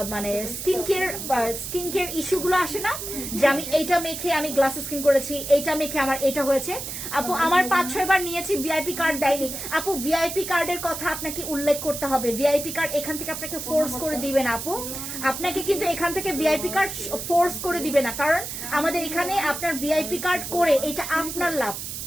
মানে স্কিন কেয়ার ইস্যুগুলো আসে না, যে আমি এইটা মেখে আমি গ্লাস স্কিন করেছি, এইটা মেখে আমার এটা হয়েছে। আপু আমার 5-6 বার নিয়েছি, ভিআইপি কার্ড দেয়নি। আপু ভিআইপি কার্ডের কথা আপনাকে উল্লেখ করতে হবে, ভিআইপি কার্ড এখান থেকে আপনাকে ফোর্স করে দিবে না আপু, আপনাকে কিন্তু এখান থেকে ভিআইপি কার্ড ফোর্স করে দিবে না, কারণ আমাদের এখানে আপনার ভিআইপি কার্ড করে এটা আপনার লাভ,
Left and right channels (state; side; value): noise; right; hiss, 7 dB below the sound